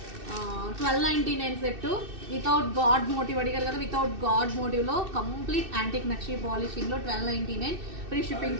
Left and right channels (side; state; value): left; late; 2.6 ms